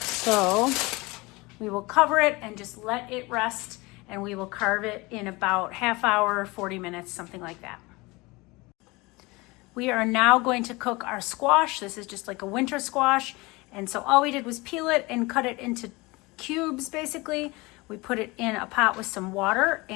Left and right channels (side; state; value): right; quieter; 23.7 dB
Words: we will cover it and just let it rest, and we will carve it in about half hour, 40 minutes, something like that. We are now going to cook our squash. This is just like a winter squash, And so all we did was peel it and cut it into cubes, basically. We put it in a pot with some water,